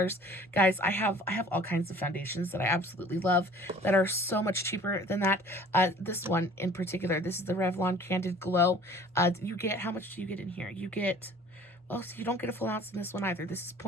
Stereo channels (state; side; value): normal; both; correlation 0.49